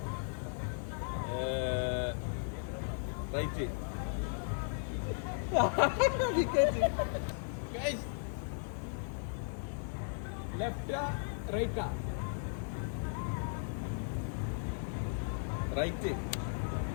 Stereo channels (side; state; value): right; silent; digital silence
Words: റൈറ്റ്. ലെഫ്റ്റാ റൈറ്റാ? റൈറ്റ്.